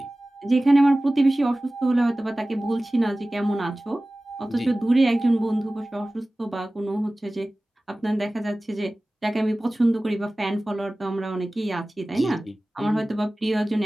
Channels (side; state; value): both; normal; correlation 0.97